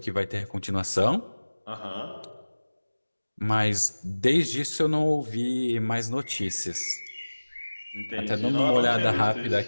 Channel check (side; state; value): both; inverted; correlation -1.00